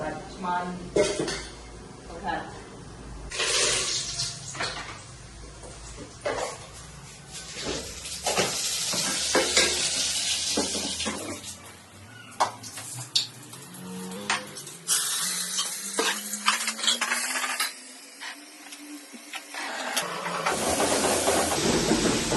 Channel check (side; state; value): both; identical; correlation 1.00